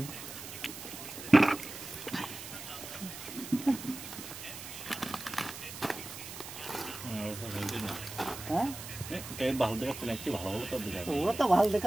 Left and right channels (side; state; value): right; noise; hiss, 11 dB below the sound